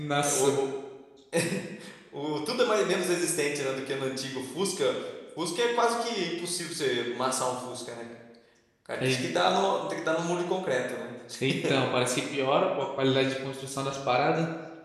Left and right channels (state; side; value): identical; both; correlation 1.00